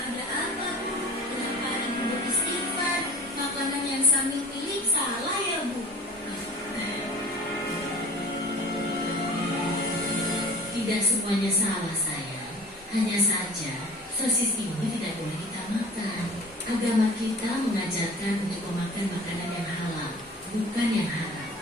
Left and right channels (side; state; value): both; normal; correlation 0.42